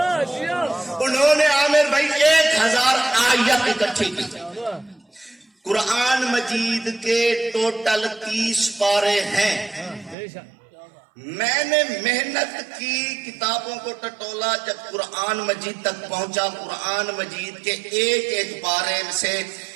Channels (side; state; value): left; drops out; at 10.2 s